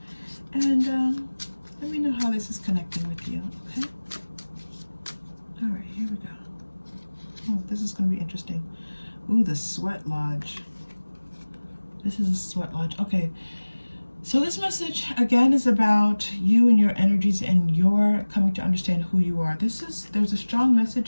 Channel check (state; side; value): inverted; both; correlation -1.00